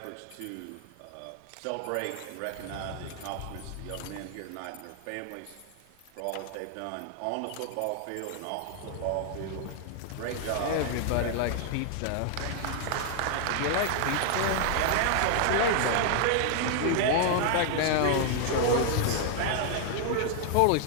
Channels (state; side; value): different; both; correlation 0.00